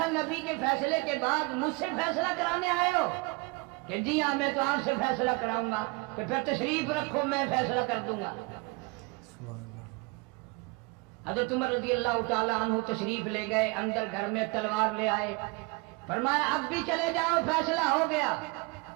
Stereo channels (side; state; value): left; quieter; 27.1 dB